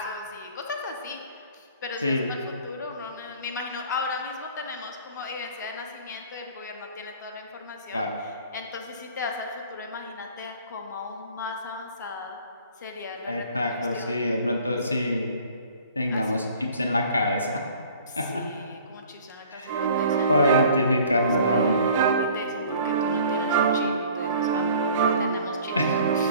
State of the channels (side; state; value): both; inverted; correlation -0.50